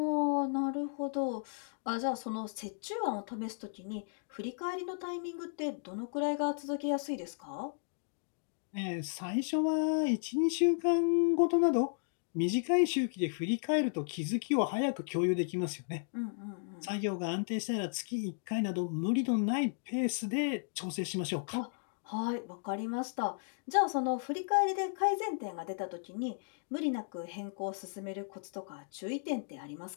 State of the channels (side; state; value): right; silent; digital silence